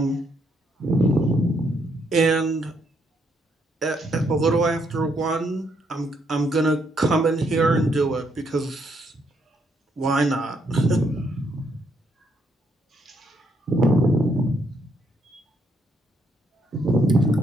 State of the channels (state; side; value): normal; both; correlation 0.73